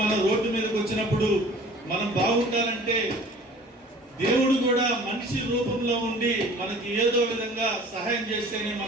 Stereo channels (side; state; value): both; normal; correlation 0.47